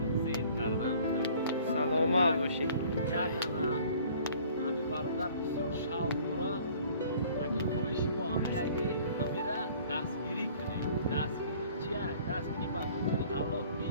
زیر کردم سلامت باشی. یک همین برادر بسیار شوق داره اگر خواهشی با همین را دستگیری کنیم دستگیری چیه؟ دستگیری با خودی الله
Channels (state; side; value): inverted; both; correlation -0.53